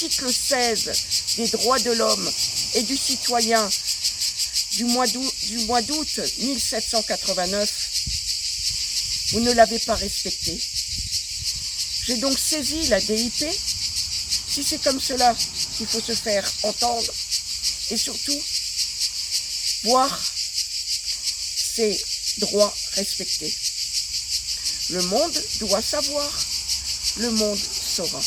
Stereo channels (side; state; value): both; identical; correlation 1.00